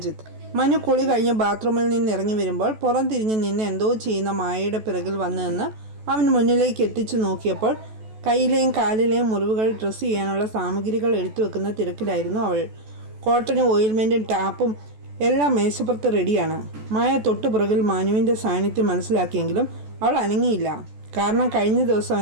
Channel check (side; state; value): left; late; 14 ms